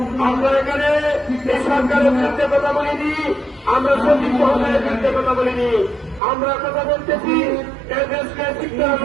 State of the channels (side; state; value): left; drops out; at 6.2 s